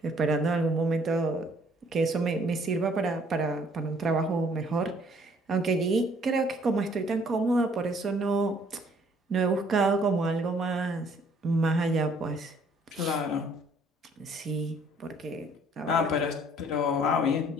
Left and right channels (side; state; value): both; normal; correlation 0.61